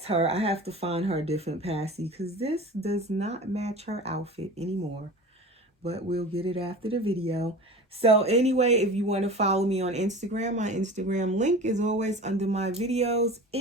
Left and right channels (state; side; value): normal; both; correlation 0.36